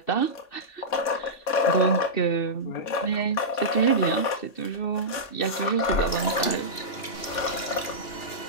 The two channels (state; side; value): late; right; 2.9 ms